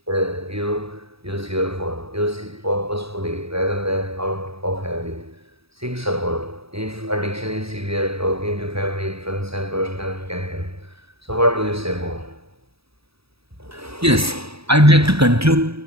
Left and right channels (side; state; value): left; late; 0.77 ms